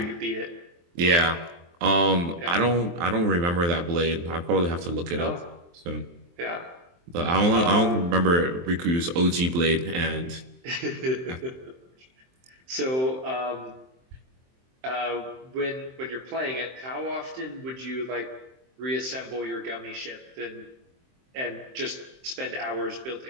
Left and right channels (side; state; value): left; late; 23 ms